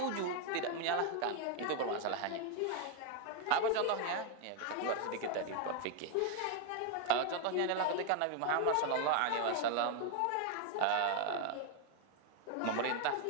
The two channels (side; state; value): both; different; correlation 0.01